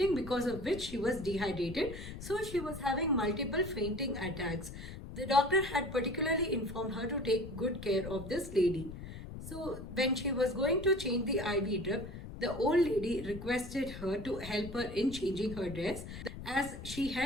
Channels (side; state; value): left; noise; rumble, 10 dB below the sound